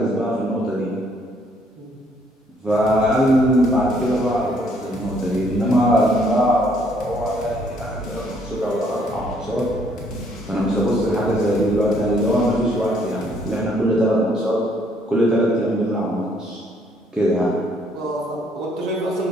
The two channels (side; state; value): both; normal; correlation 0.67